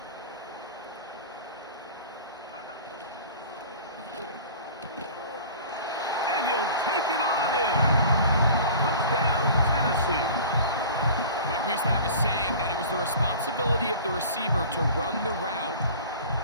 And he'll take it on in. Touchdown, Tennessee. Mike, we used to have a saying that it was the responsibility of the receiver to run the route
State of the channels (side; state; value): both; inverted; correlation -0.41